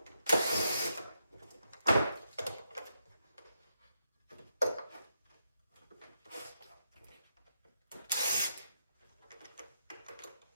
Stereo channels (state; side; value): inverted; both; correlation -0.83